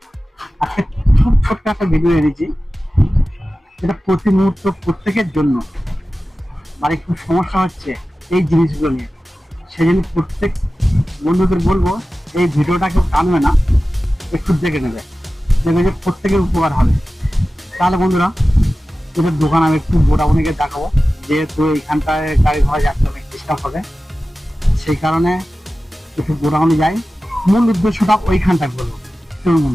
আজকে খুব ছোট্ট একটা ভিডিও এনেছি, এটা প্রতি মুহূর্ত প্রত্যেকের জন্য। বাড়ি খুব সমস্যা হচ্ছে এই জিনিসগুলো নিয়ে, সেই জন্য প্রত্যেক বন্ধুদের বলবো এই ভিডিওটা কেউ টানবে না, একটু দেখে নেবে, দেখবে যে প্রত্যেকের উপকার হবে। তাহলে বন্ধুরা, এদের দোকান আমি একটু বোটাবনিকে দেখাবো, যেহেতু এইখানটায় গাড়ি ঘোড়া যাচ্ছে অনেক ডিস্টার্ব হবে, সেই কারণে একটু বোটাবনি যাই। মূল উদ্দেশ্যটা ওইখানটায় বলবো, চলুন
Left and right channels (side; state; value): both; normal; correlation 0.95